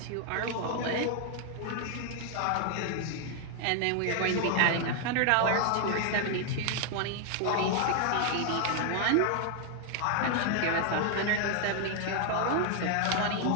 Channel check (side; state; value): both; different; correlation 0.00